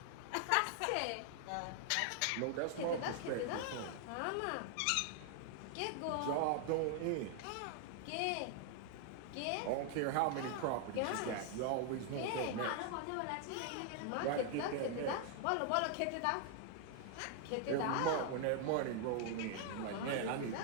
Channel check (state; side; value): different; both; correlation 0.00